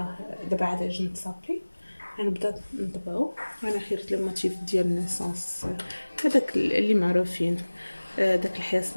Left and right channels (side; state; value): both; inverted; correlation -1.00